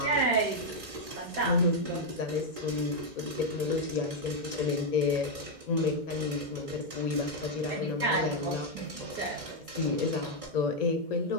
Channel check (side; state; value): left; late; 2.1 ms